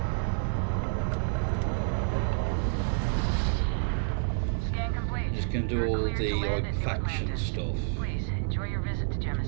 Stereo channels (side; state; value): left; silent; digital silence